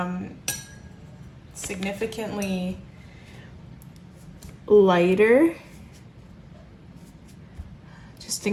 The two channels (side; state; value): both; identical; correlation 1.00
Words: significantly lighter, just